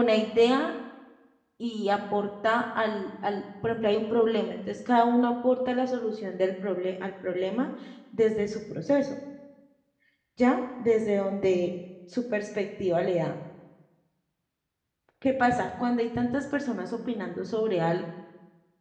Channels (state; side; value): identical; both; correlation 1.00